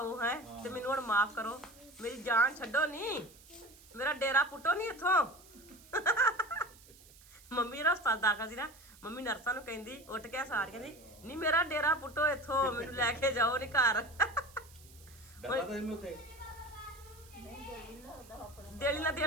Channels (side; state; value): right; noise; hiss, 23 dB below the sound